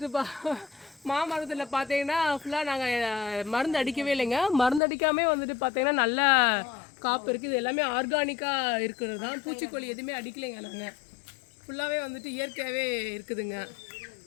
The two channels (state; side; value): drops out; right; at 4.8 s